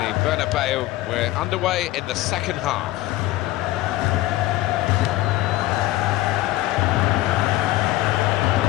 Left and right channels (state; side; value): quieter; right; 16.8 dB